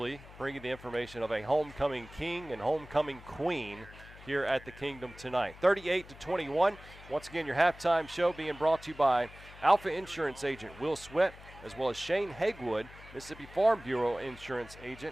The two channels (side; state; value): left; noise; hum, 18 dB below the sound